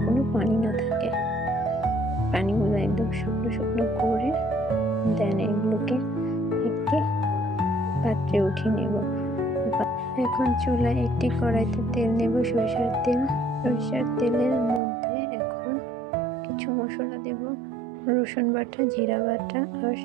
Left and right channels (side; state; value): left; drops out; at 14.8 s